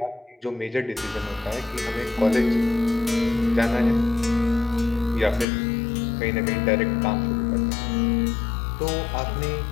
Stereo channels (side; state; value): right; drops out; at 5.5 s